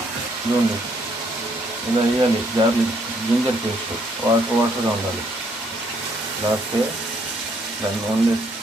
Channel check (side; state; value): both; normal; correlation 0.69